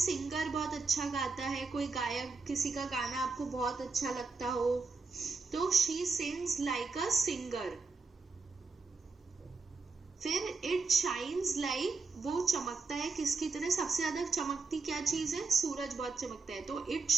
बहुत अच्छा गाता है, कोई गायक, किसी का गाना आपको बहुत अच्छा लगता हो, तो she sings like a singer. फिर इट शाइन्स लाइक, वो चमकता है किसकी तरह? सबसे ज्यादा चमकती क्या चीज है? सूरज बहुत चमकता है, तो इट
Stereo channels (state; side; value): quieter; left; 4.2 dB